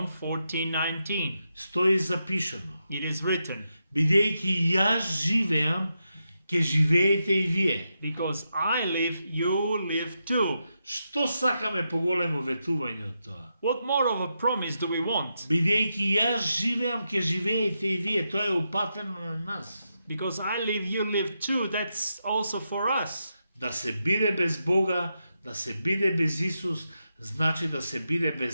14:19, Стои запишано: it is written, бидејќи јас живеам, ќе живеете и вие. because I live, you live too. Што сакаме поголемо ветување од тоа? What more of a promise do we want? Бидејќи јас живеам, ќе живеете и вие. Тоа е упатено на нас. Because I live, you live too. That's also for us. Да се биде без Бога, да се биде без Исус, значи да се биде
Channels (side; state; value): both; inverted; correlation -0.85